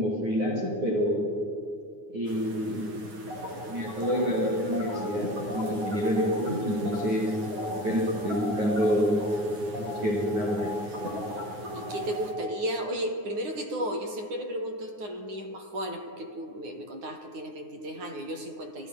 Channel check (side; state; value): left; late; 9.6 ms